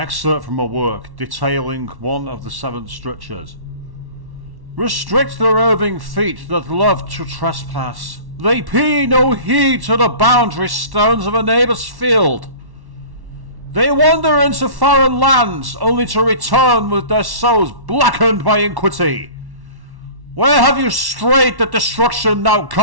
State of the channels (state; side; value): late; left; 1.1 ms